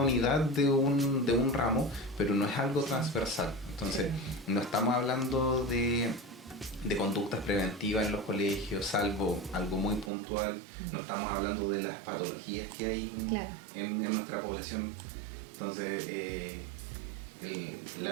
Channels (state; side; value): drops out; left; at 10.1 s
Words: de un ramo, pero no es algo transversal. Entonces, no estamos hablando de conductas preventivas en los colegios, salvo algo muy puntual. No estamos hablando de las patologías que hay en nuestra población. Entonces,